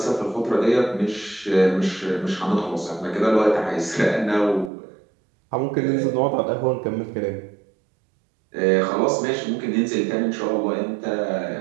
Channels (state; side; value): drops out; left; at 4.7 s